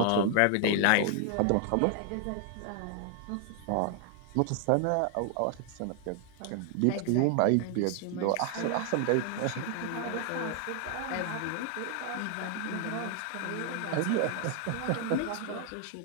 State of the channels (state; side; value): different; both; correlation 0.00